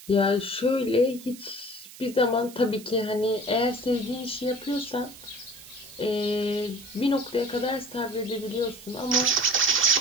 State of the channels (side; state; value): right; noise; hiss, 18 dB below the sound